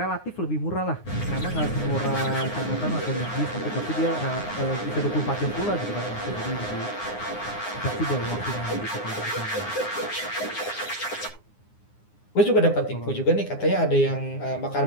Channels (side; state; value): right; late; 9.7 ms